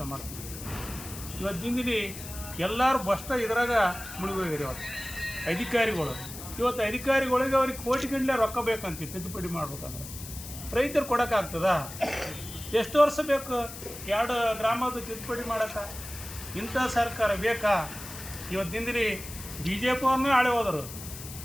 ಮಾಡ್ತೀವಿ? ಇವತ್ತಿಂದಿಲ್ಲಿ ಎಲ್ಲರೂ ಬಷ್ಟ ಇದ್ರಾಗ ಮುಳುಗೋಗಿರಿ. ಅಧಿಕಾರಿಗಳು ಇವತ್ತು ಅಧಿಕಾರಿಗಳಿಗೆ ಅವ್ರಿಗೆ ಕೋಟಿಗಟ್ಟಲೆ ರೊಕ್ಕ ಬೇಕಂತ ತಿದ್ದುಪಡಿ ಮಾಡ್ಬೇಕಂದ್ರೆ ರೈತರು ಕೊಡೋಕ್ಕಾಗ್ತದ? ಎಷ್ಟು ವರ್ಷ ಬೇಕು 2 ಗ್ರಾಮದ ತಿದ್ದುಪಡಿ ಮಾಡೋಕ್ಕೆ? ಇಂಥ ಸರ್ಕಾರ ಬೇಕಾ? ಇವತ್ತಿಂದಿರಿ ಬಿ ಜೆ ಪಿ ಅವ್ರನ್ನೇ ಆಳೆ ಹೋದರು,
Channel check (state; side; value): noise; left; hiss, 12 dB below the sound